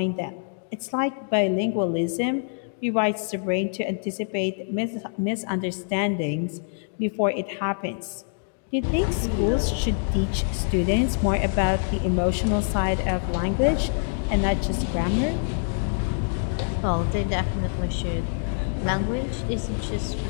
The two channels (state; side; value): silent; right; digital silence